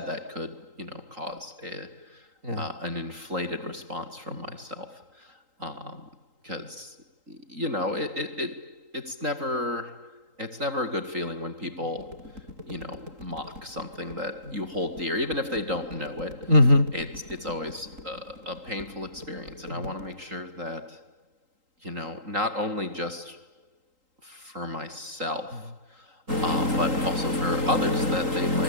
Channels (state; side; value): late; left; 3.8 ms